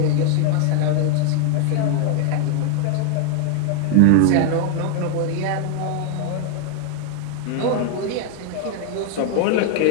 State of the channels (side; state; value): both; different; correlation 0.00